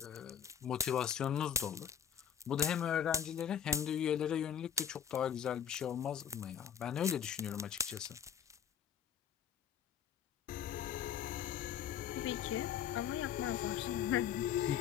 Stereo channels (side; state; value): right; quieter; 8.6 dB